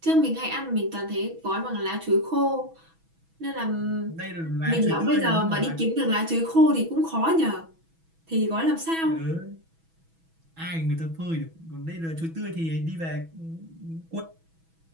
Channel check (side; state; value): left; late; 6.1 ms